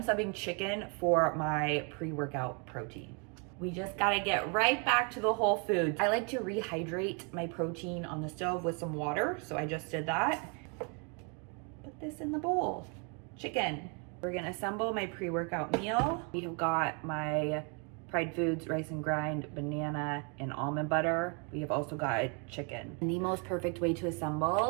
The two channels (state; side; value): quieter; left; 35.9 dB